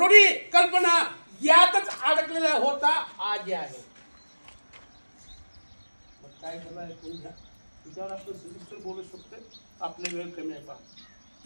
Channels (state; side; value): inverted; both; correlation -1.00